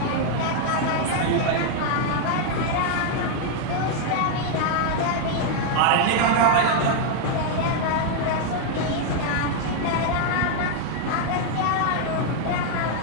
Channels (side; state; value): both; different; correlation 0.00